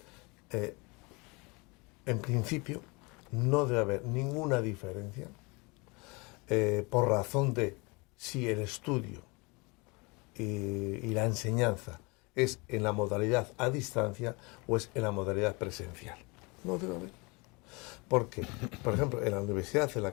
En principio, no debe haber ninguna diferencia por razón de si el estudio y la enseñanza es en la modalidad a distancia o es en la modalidad presencial. No debe haber. Porque, por ejemplo, en la universidad a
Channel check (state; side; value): quieter; right; 27.7 dB